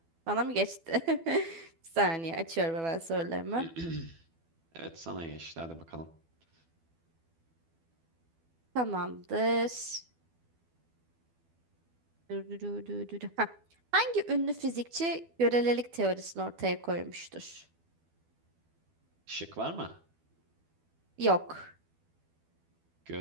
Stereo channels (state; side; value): late; left; 12 ms